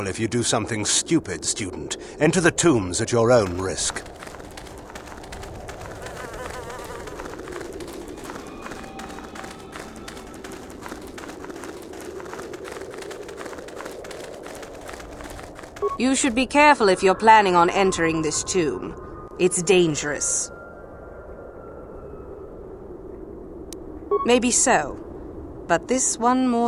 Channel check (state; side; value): identical; both; correlation 1.00